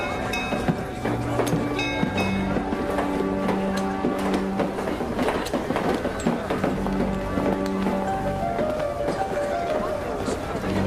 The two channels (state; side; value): identical; both; correlation 1.00